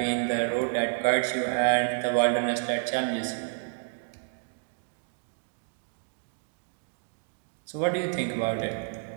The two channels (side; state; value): left; silent; digital silence